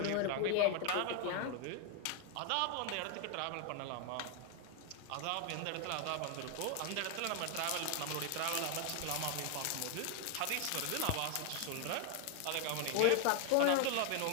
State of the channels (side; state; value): both; different; correlation 0.01